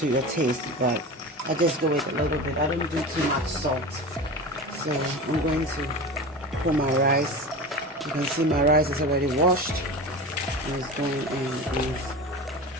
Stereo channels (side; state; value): both; normal; correlation 0.29